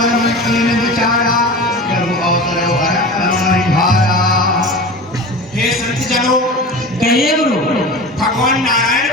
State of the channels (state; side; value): normal; both; correlation 0.33